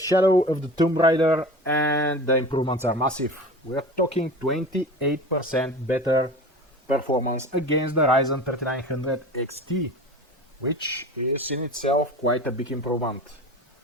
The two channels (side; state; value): both; normal; correlation 0.35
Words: of the Tomb Raider, and the improvements are massive. We're talking 28% better performance against the Ryzen 3900 XT, which is in itself quite a big improvement.